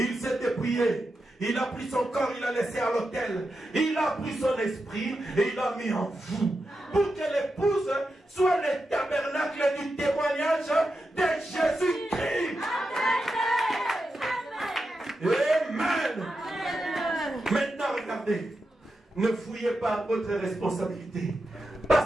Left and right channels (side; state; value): both; normal; correlation 0.88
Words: s'est dépouillé. Il a pris son corps, il l'a laissé à l'autel. Il a pris son esprit et il l'a mis en vous. Pour que l'épouse soit le tabernacle du témoignage de Jésus-Christ. Amen. Maintenant, regardez. Ne fouillez pas votre responsabilité.